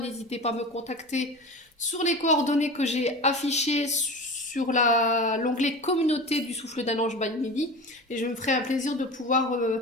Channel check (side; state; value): both; normal; correlation 0.31